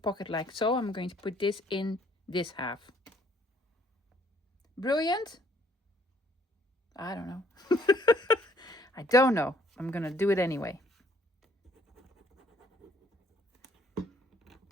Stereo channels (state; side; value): normal; both; correlation 0.63